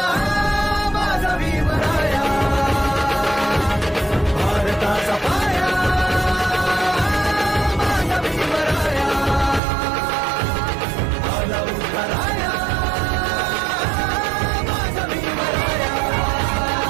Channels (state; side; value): drops out; left; at 9.6 s